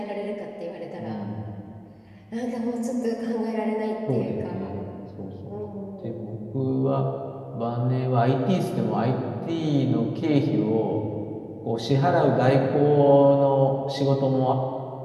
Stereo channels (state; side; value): identical; both; correlation 1.00